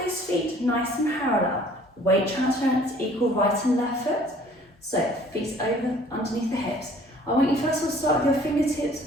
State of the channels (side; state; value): both; normal; correlation 0.54